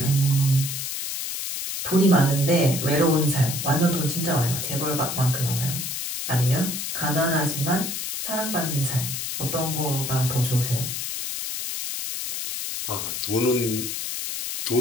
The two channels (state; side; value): noise; left; hiss, 4 dB below the sound